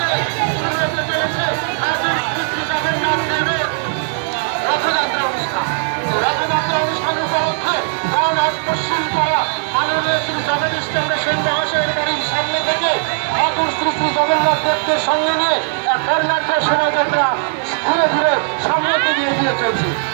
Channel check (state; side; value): silent; left; 63 dB below the other